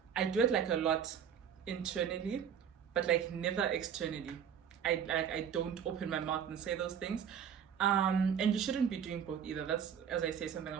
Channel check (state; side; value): quieter; left; 8.1 dB